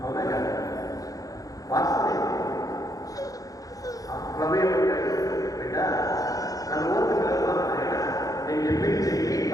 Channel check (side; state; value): right; late; 0.17 ms